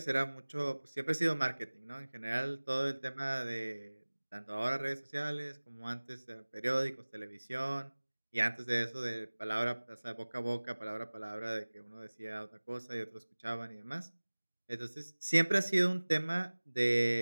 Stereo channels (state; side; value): inverted; both; correlation -1.00